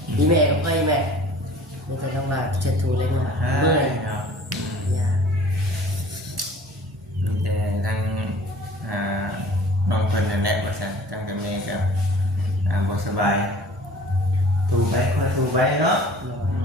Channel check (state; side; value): normal; both; correlation 0.48